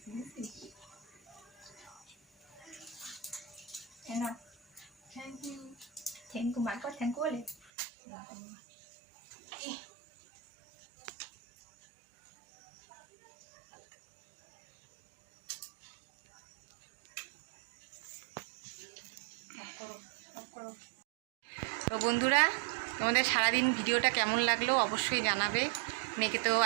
না। Thank you. থ্যাংক ইউ মার কর, থ্যাংক ইউ বলে। তো বন্ধুরা, তোমাদের সারাদিন ভিডিওটা কেমন লাগলো অবশ্যই জানাবে। মেয়েকে তো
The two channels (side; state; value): left; drops out; at 7.6 s